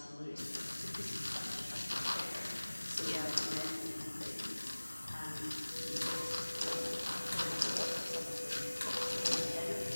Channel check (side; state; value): both; inverted; correlation -1.00